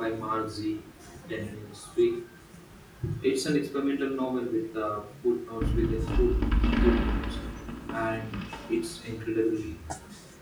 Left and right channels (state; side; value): identical; both; correlation 1.00